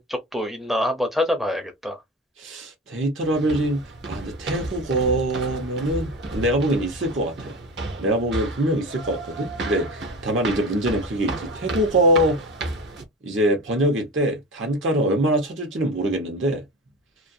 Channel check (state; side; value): normal; both; correlation 0.31